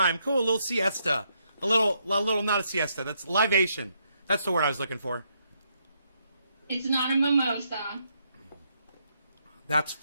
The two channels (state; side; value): inverted; both; correlation -0.76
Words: Cool, a little siesta. A little, not a siesta. That's libation. That's the word I was looking for. It's not a mimosa. That's